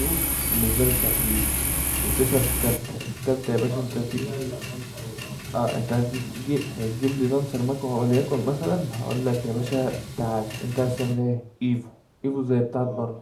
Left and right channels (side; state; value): both; identical; correlation 1.00